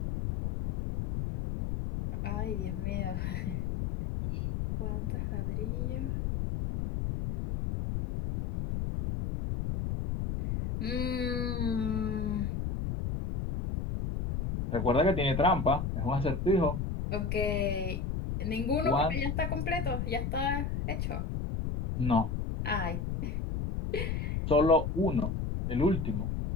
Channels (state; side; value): noise; left; rumble, 2 dB below the sound